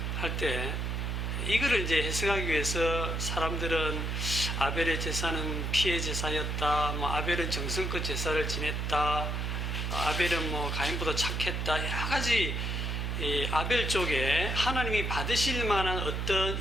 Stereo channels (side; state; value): right; noise; hum, 1 dB below the sound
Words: 할 때 이거를 이제 해석하기 위해서 사람들은 아벨의 제사는 피의 제사였다, 뭐 아벨은 정성껏 제사를 지냈다, 아벨은 뭐 가인보다 착했다, 여러 가지 아벨 쪽에 하나님이 받으실 만한 어떤